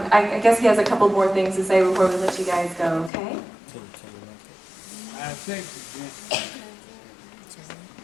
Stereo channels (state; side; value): drops out; right; at 3.1 s